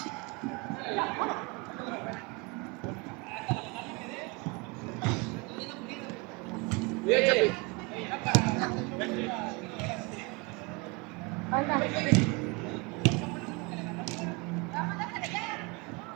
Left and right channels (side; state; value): left; quieter; 27.3 dB